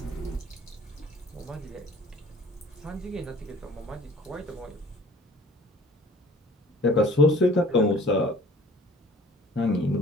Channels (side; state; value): both; normal; correlation 0.50